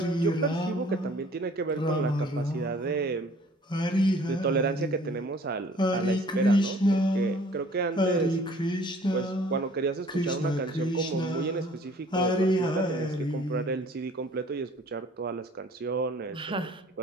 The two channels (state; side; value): normal; both; correlation 0.53